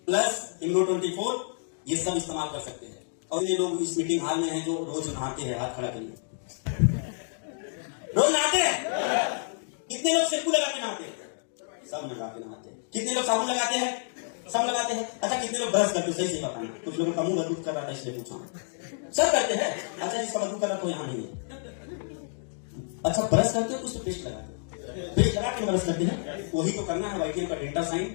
प्लस, इम्यूनो 24, ये सब इस्तेमाल कर सकते हैं। और ये लोग इस मीटिंग हॉल में हैं जो रोज नहाते हैं, हाथ खड़ा करिए। रोज नहाते हैं? कितने लोग शैम्पू लगा के नहाते हैं? सब लगा के नहाते हैं। कितने लोग साबुन लगाते हैं? सब लगाते हैं। अच्छा, कितने लोग ब्रश करते हैं? सही से बताना। कुछ लोगों का मुंह बदबू कर रहा था इसलिए पूछा। सब करते हैं। अच्छा, जिसका बदबू कर रहा तो यहाँ नहीं है। अच्छा, ब्रश करते हो कुछ तो पेस्ट लगाते हो, पेस्ट लगा के ब्रश करते हैं, वही तो करना है। वाइटियम का डेल्टा साइन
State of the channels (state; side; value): silent; right; digital silence